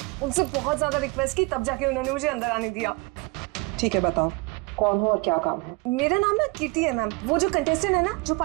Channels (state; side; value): quieter; left; 26.1 dB